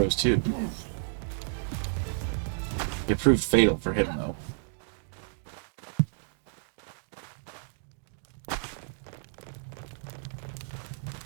too. It proved fatal for him though.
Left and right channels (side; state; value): left; silent; digital silence